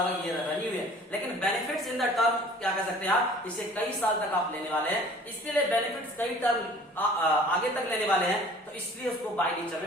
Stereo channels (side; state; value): both; normal; correlation 0.49